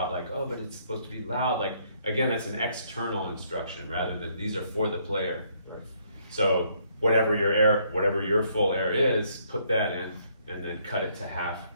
like, oh, but it's supposed to be loud. Like, again, it's an external instruction rather than these are for the player. So whatever your full air is, put that in, and then cut it to half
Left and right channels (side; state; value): both; inverted; correlation -0.68